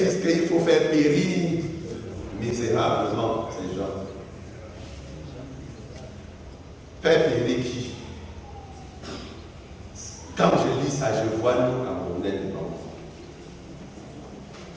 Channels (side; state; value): both; identical; correlation 1.00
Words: disent qu'il faut faire périr misérablement ces gens. Faire périr qui? Quand je lis ça, je vois nous Camerounais dedans.